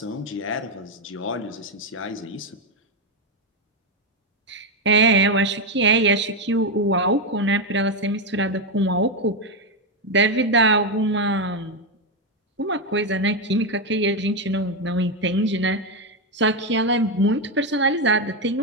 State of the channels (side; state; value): both; normal; correlation 0.06